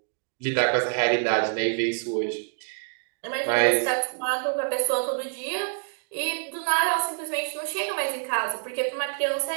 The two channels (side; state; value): left; silent; 60 dB below the other